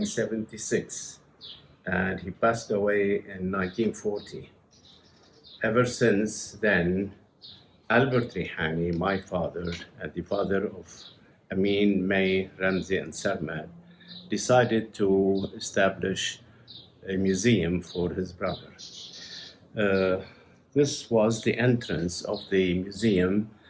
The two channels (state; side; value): identical; both; correlation 1.00